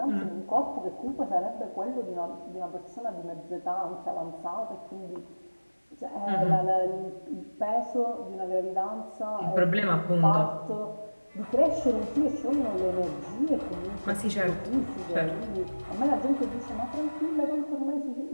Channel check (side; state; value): both; inverted; correlation -1.00